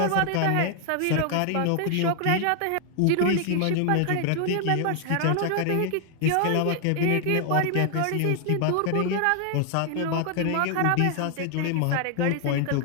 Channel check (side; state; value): both; different; correlation 0.00